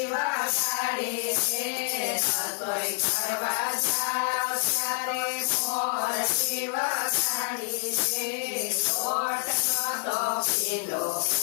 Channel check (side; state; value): right; silent; 58 dB below the other